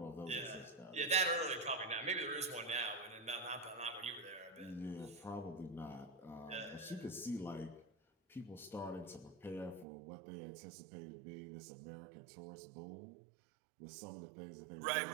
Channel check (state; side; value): drops out; left; at 9.9 s